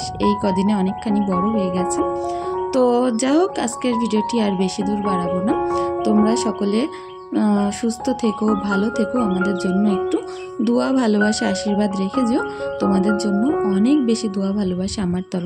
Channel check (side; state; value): both; identical; correlation 1.00